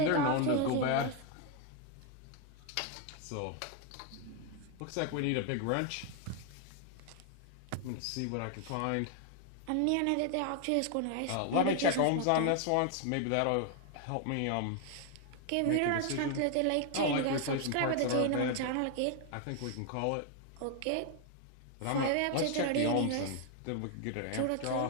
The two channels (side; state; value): both; different; correlation 0.00